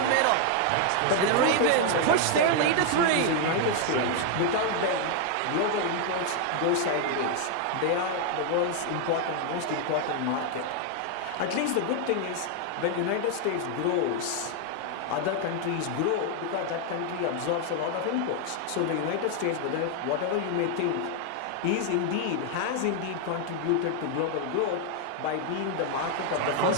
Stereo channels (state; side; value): different; both; correlation 0.00